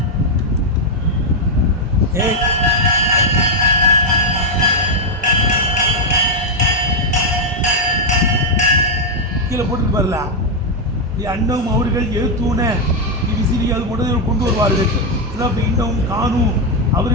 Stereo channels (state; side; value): normal; both; correlation 0.00